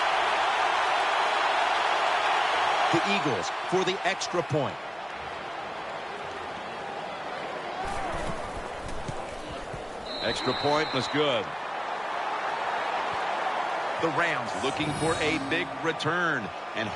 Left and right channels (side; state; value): both; identical; correlation 1.00